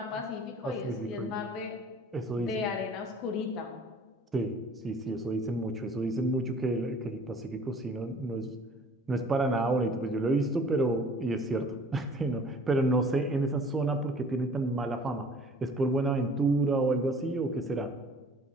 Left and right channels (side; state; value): both; normal; correlation 0.51